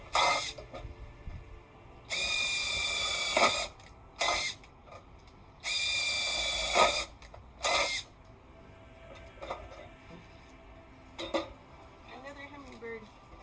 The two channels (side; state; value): both; identical; correlation 1.00